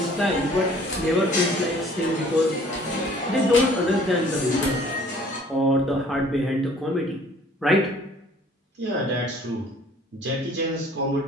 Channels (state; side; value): normal; both; correlation 0.54